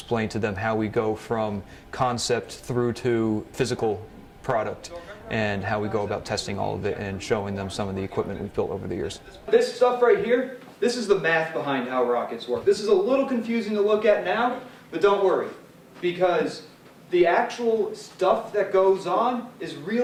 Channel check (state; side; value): identical; both; correlation 1.00